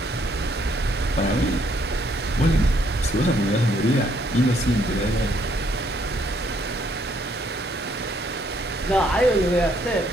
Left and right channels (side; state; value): both; normal; correlation 0.69